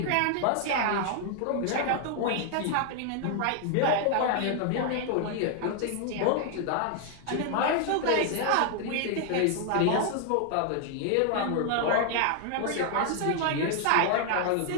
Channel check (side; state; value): both; different; correlation 0.00